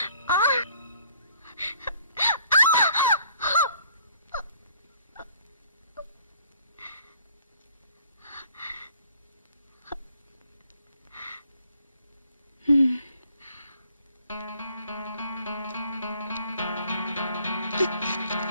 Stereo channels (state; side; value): inverted; both; correlation -0.60